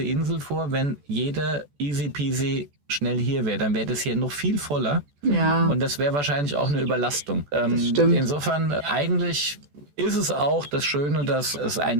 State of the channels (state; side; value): late; left; 14 ms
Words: Insel vor, wenn jeder easy peasy schnell hier wäre, dann wäre das hier noch viel voller. Ja. Und das wäre wahrscheinlich auch eine Überlastung. stimmt. Insofern eigentlich ist es auch das Schöne, dass es